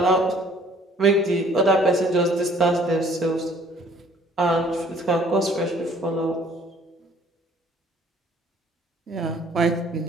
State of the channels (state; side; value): normal; both; correlation 0.57